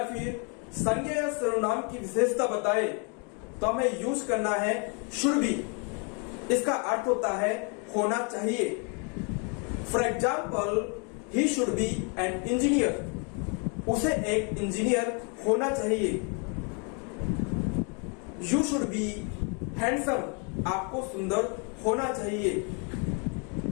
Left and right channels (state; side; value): quieter; right; 36.1 dB